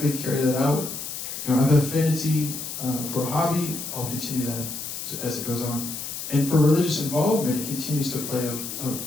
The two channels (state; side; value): noise; left; hiss, 7 dB below the sound